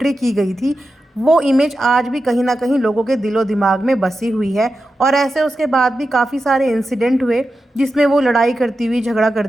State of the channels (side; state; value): both; normal; correlation 0.91